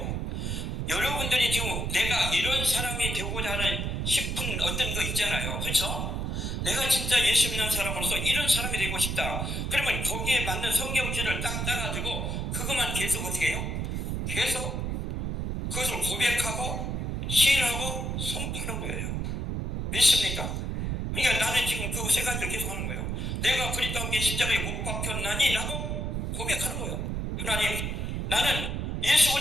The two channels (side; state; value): right; noise; rumble, 2 dB below the sound